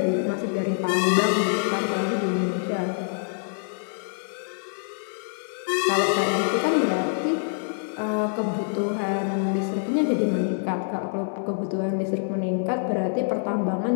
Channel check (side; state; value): right; silent; digital silence